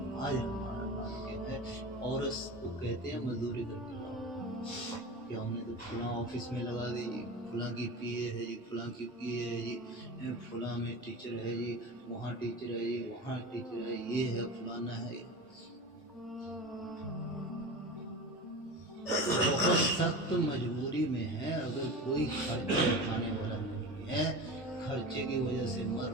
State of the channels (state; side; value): normal; both; correlation 0.30